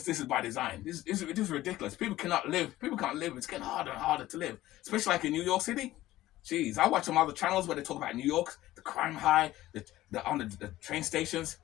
this is by design. It is ridiculous. People cannot live. People can't live. It's getting harder and harder to live, especially like in New York City. Jeez, I watch some other channels where they talk about New York, the crime high, on the train stations.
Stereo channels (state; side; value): quieter; right; 15.7 dB